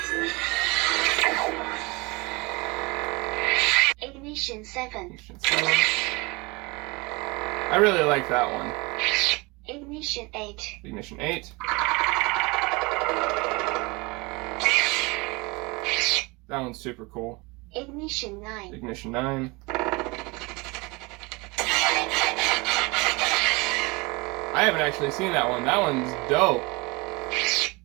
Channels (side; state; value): left; quieter; 25.8 dB